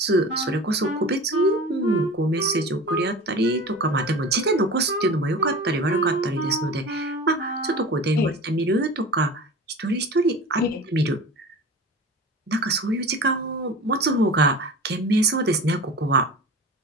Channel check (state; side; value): normal; both; correlation 0.36